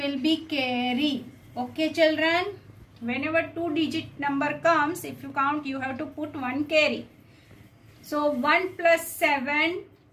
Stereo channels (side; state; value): both; identical; correlation 1.00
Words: be carry. Okay children, whenever 2 digit number comes, if you count you have to put 1 carry. So 1 plus 7,